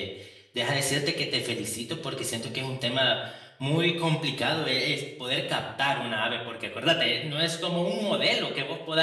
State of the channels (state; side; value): identical; both; correlation 1.00